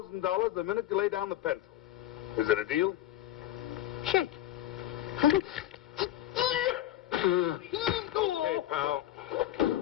the minute you lay down the pencil. Is it a deal? Shake. Okay, pal.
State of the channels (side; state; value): right; quieter; 13.3 dB